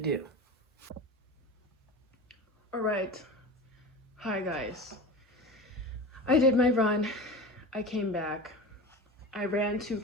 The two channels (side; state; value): both; normal; correlation 0.31